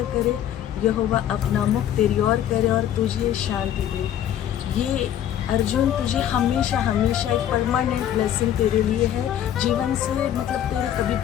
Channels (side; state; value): right; quieter; 10.7 dB